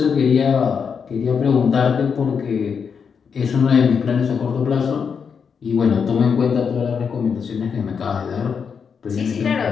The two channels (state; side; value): quieter; right; 6.4 dB